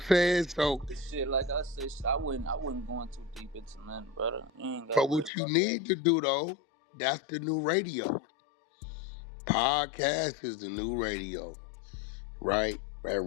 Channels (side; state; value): right; drops out; at 5.3 s